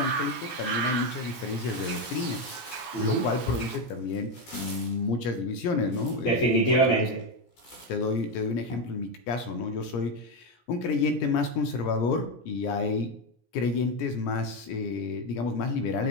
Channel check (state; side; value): late; right; 17 ms